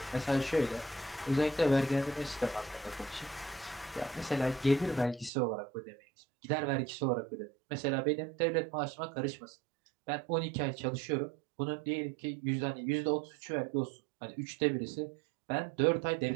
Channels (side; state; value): left; drops out; at 5.3 s